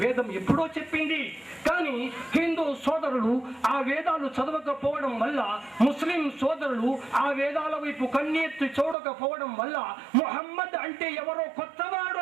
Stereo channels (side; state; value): left; drops out; at 9.0 s